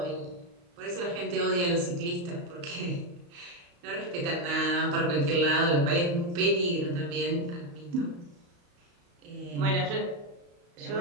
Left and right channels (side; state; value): left; late; 34 ms